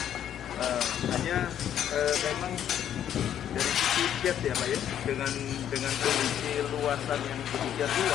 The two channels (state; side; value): quieter; right; 10.1 dB